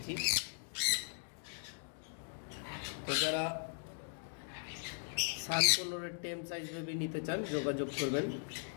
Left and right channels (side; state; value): right; silent; digital silence